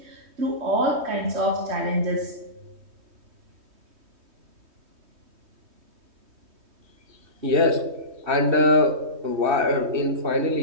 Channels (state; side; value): late; left; 3.2 ms